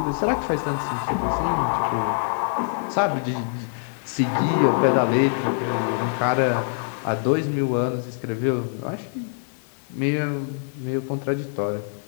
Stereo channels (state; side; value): silent; right; 62 dB below the other